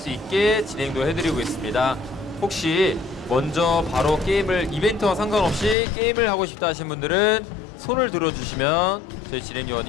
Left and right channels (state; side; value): drops out; right; at 5.8 s